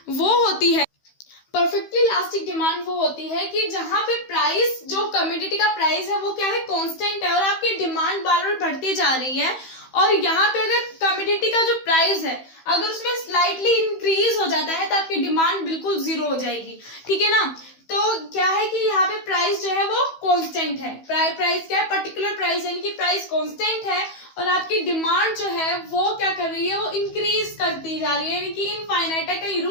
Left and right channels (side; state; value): right; late; 15 ms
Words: वो होती है, परफेक्टली इलास्टिक डिमांड वो होती है कि जहां पे प्राइस, जो कमोडिटी का प्राइस है वो क्या है, कांस्टेंट है और आपकी डिमांड बार बार बढ़ती जा रही है। और यहाँ पे अगर कमोडिटी का जो प्राइस है अगर उसमें स्लाइटली इंक्रीज हो जाता है तो आपकी डिमांड बिल्कुल जीरो हो जाएगी। ठीक है ना। तो क्या है कि यहाँ पे प्राइस जो है वो कांस्टेंट है। प्राइस क्या है, पर्टिकुलर प्राइस, यानी कि प्राइस कांस्टेंट है और आपकी डिमांड जो है वो क्या कर रही है, वो इंक्रीज करती जा रही है, यानी कि इनफाइनाइट है, कहीं